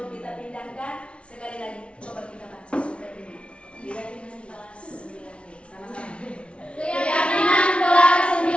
kita pindahkan, sekali lagi coba kita baca surat ini. Keyakinan kelas 9B. Sama-sama. Keyakinan kelas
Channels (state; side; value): late; right; 0.059 ms